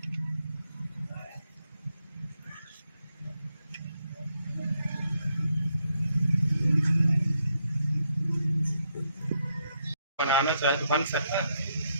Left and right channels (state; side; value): inverted; both; correlation -0.78